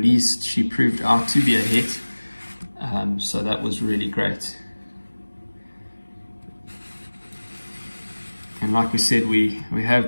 she proved out to be a het. So that was really great. And like we said, we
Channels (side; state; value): both; inverted; correlation -1.00